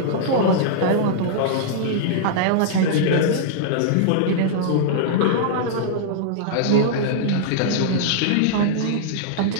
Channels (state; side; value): different; both; correlation -0.02